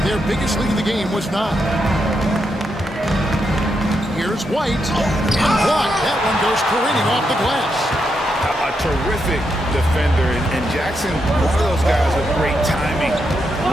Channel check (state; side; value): normal; both; correlation 0.82